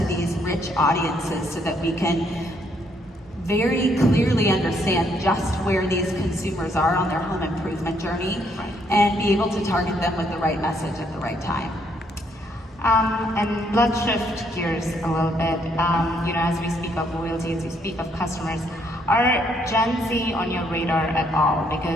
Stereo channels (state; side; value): normal; both; correlation 0.71